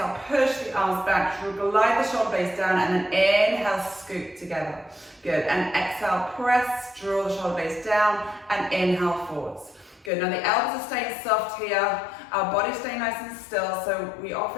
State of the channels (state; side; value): drops out; right; at 10.1 s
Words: push the arms back, glide the shoulder blades down, and then inhale, scoop together. Good, and exhale, press, draw the shoulder blades down, and inhale forwards. Good, now the elbows are staying soft here, our body's staying nice and still, so we